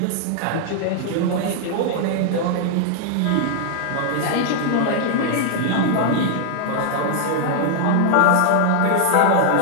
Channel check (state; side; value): different; both; correlation 0.00